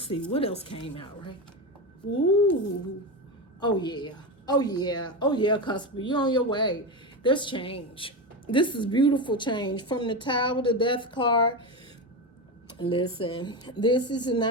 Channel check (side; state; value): both; normal; correlation 0.17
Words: see what else came out, right? Ooh, oh yeah, Cusp, you're on your way. There's change. This is beautiful change from the Tower, the Death card. Listen, this is the